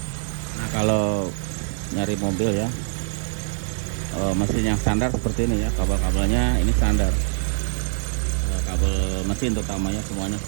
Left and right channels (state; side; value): silent; left; digital silence